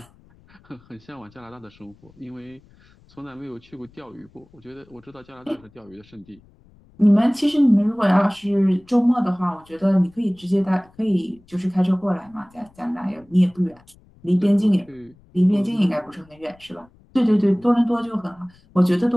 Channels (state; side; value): noise; left; rumble, 29 dB below the sound